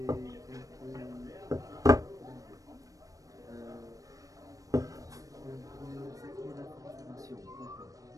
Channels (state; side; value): late; left; 0.16 ms